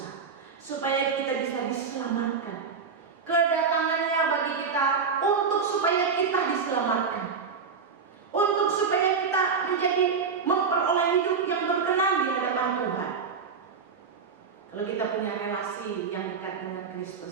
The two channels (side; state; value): left; quieter; 5.5 dB